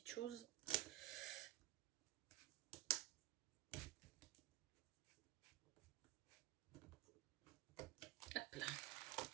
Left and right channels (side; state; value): left; quieter; 16.0 dB